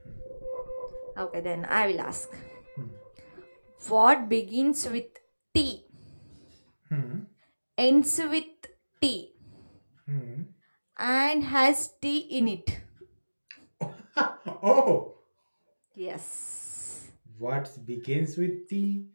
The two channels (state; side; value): inverted; both; correlation -1.00